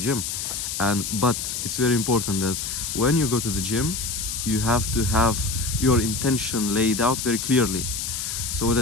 But it's very important that when you go to the gym, you have to have your intention laid out very clearly. So what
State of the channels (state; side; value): noise; left; hiss, 4 dB below the sound